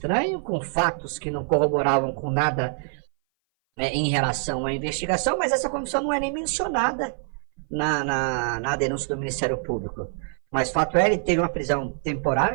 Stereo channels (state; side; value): silent; left; 58 dB below the other